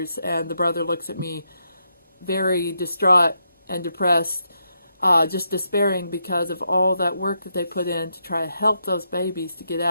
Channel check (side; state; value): both; inverted; correlation -0.81